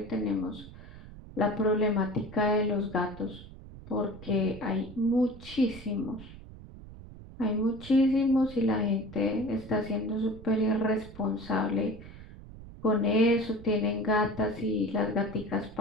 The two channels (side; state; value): right; noise; rumble, 16 dB below the sound